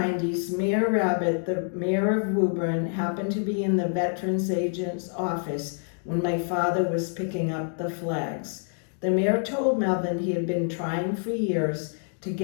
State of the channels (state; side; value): silent; right; 60 dB below the other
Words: Mayor Rabbit, the mayor of Woburn, happened to be in the Veterans Agent's office when my father was picking up the flags. The mayor told Melvin he had been trying for years to